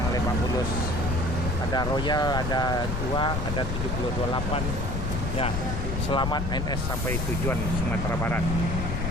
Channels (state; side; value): noise; left; rumble, 1 dB below the sound